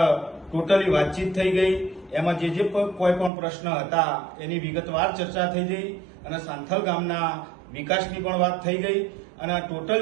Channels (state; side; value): drops out; left; at 3.3 s